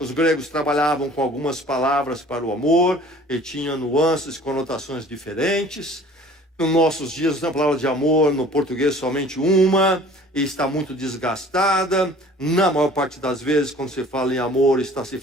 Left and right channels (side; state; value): both; normal; correlation 0.49